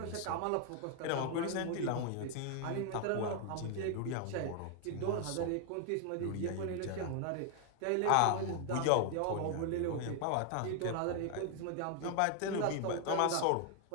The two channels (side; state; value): both; different; correlation 0.00